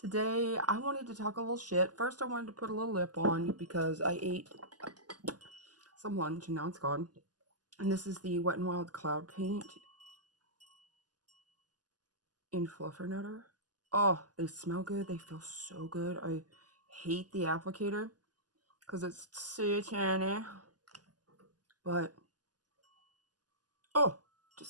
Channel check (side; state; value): left; late; 0.69 ms